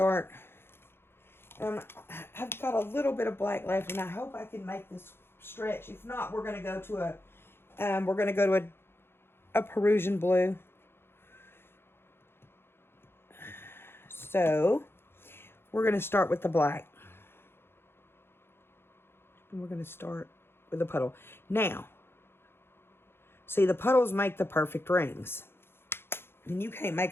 I've got a little bit of black left, and I hope I can make this stretch. If not, we're going to go to a Perusian blue. So we're going to start with the black. And we're going to start with the puddle. Now, see, the puddles make the perfect rings. And you can't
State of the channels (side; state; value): right; late; 0.11 ms